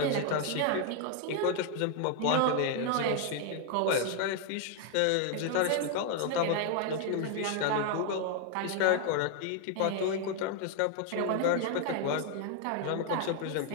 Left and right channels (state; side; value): different; both; correlation 0.00